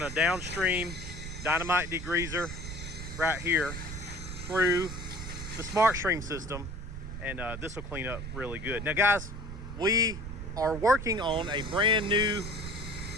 to downstream dynamite degreaser right here through the smart stream system, and this will clean up really good. Now guys, we are working on a brand new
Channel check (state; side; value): noise; right; rumble, 8 dB below the sound